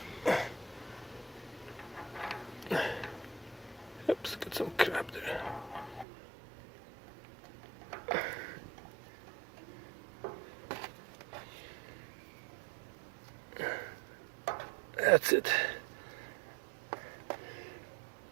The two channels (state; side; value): drops out; left; at 6.1 s